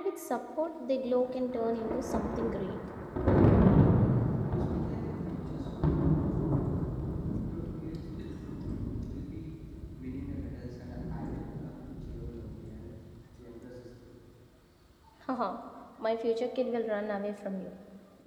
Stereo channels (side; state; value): both; identical; correlation 1.00